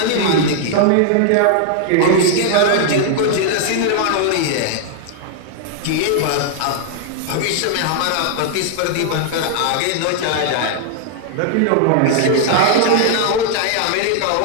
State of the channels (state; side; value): different; both; correlation 0.00